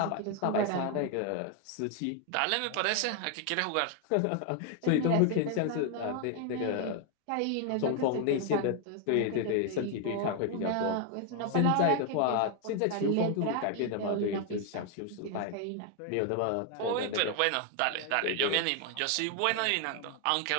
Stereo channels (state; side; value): different; both; correlation 0.00